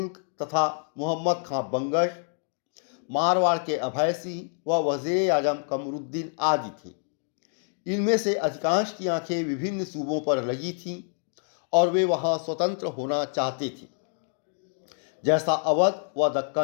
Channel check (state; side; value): silent; right; 60 dB below the other